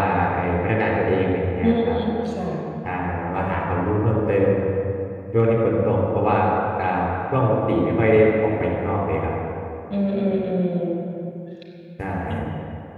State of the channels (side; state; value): both; identical; correlation 1.00